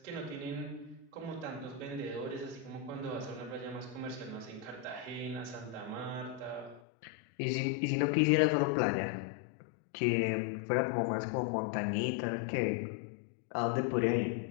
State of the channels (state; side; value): drops out; right; at 6.8 s